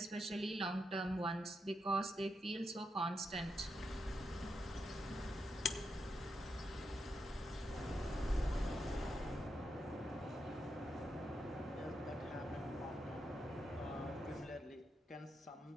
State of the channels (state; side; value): normal; both; correlation 0.84